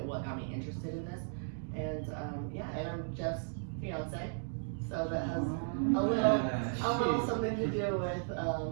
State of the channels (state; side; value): silent; left; digital silence